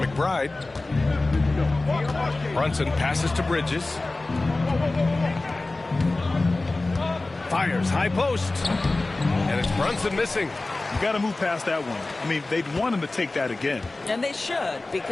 Brunson passes to Bridges. Fires high post. And it's Brunson missing. You got to move past that one. I mean, they'd want him to take that again. And they should,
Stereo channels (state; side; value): quieter; right; 3.1 dB